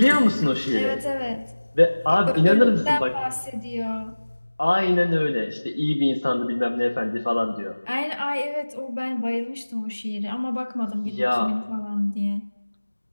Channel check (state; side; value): inverted; both; correlation -1.00